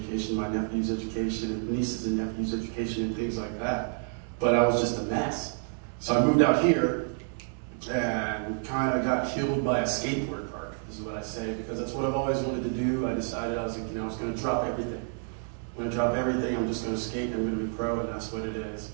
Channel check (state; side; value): silent; left; 57 dB below the other